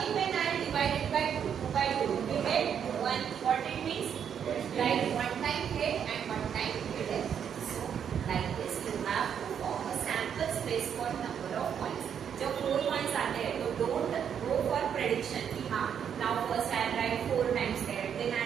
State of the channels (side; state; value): left; quieter; 8.2 dB